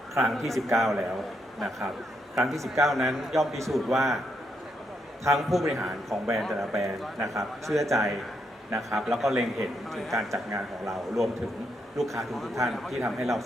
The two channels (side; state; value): both; normal; correlation 0.78